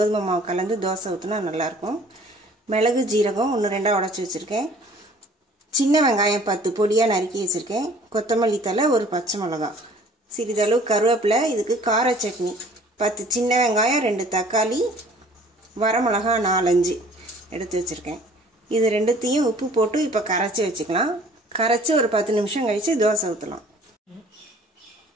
மாவு கலந்து தோசை ஊற்றினா நல்லாயிருக்கும். மிளகு ஜீரகம் 1-2 உடச்சி வச்சுருக்கேன். சின்ன வெங்காயம் 10 பொடியாக நறுக்கி வச்சுருக்கேன். கொத்தமல்லி தழை, 1 பச்சை மிளகாய், சிறிதளவு கருவேப்பிலை. இதுக்கு கார சட்னி 10 சின்ன வெங்காயம், 2 தக்காளி, வரமிளகா 4-5 எடுத்து வச்சுருக்கேன். இது ரெண்டுத்தையும் உப்பு போட்டு இப்போ கரைச்சி வச்சுக்கலாம். கரைச்சி ஒரு 10 நிமிஷம் கழித்து தோசை ஊற்றலாம்.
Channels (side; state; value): both; normal; correlation 0.52